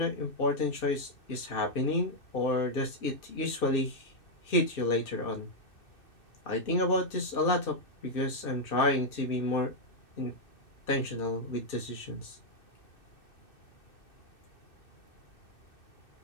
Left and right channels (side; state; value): right; late; 2.6 ms